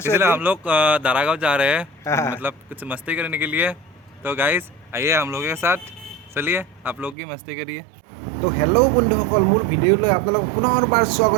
हम लोग दारागांव जा रहे हैं मतलब कुछ मस्ती करने के लिए। तो गाइस आइए हम लोगों के साथ चलिए आप लोग की मस्ती करिए। तो हेलो बंधुসকল মোৰ ভিডিঅ'লৈ আপোনালোকক পুনৰবাৰ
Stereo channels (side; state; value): left; drops out; at 7.2 s